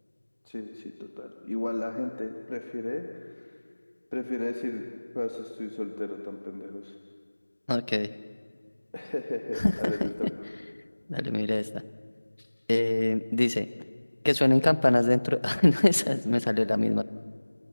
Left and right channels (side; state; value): both; inverted; correlation -1.00